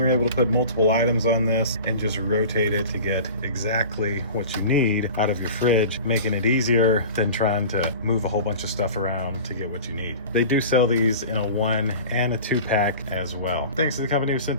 able to put multiple items on this and just rotate it to get exactly what you need out of your fridge, making it easier than trying to move a whole bunch of stuff around to get what you need. They do sell these in a 1 and a 2 pack as well. Thanks to the company who sent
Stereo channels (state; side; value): inverted; both; correlation -0.37